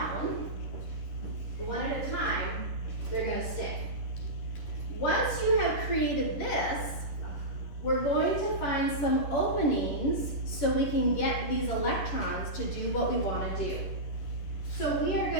one at a time, they're going to stick. Once you have created this, we're going to find some openings so we can get these electrons to do what we want to do. So we are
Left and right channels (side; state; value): right; late; 11 ms